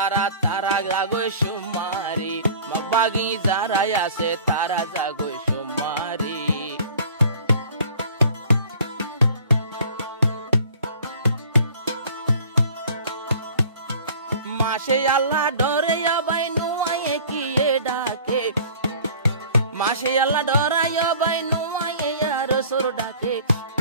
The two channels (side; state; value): both; inverted; correlation -0.48